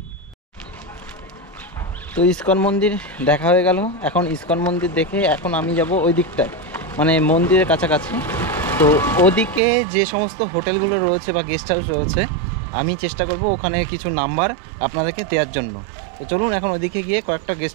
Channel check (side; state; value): left; drops out; at 9.6 s